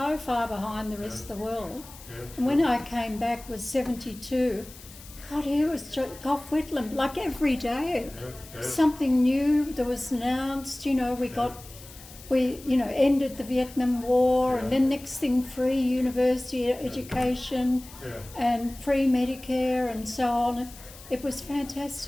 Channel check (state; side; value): noise; left; hiss, 19 dB below the sound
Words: far behind the rest of the world. Yes. And when I came back was 72, God, here was Gough Whitlam, like every day. Yes. Something new that was announced, you know, we ended the Vietnam War, and then next thing free university education and free Medicare and so on. It was